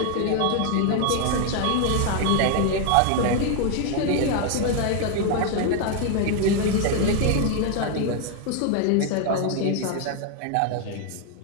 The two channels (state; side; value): different; both; correlation 0.00